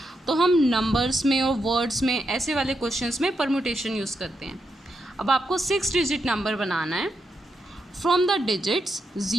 तो हम नंबर्स में और वर्ड्स में ऐसे वाले क्वेश्चंस में परमुटेशन यूज़ करते हैं। अब आपको 6 डिजिट नंबर बनाना है। फ्रॉम द डिजिट्स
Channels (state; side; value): normal; both; correlation 0.83